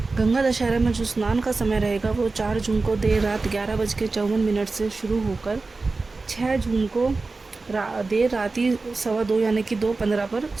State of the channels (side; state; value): left; quieter; 3.7 dB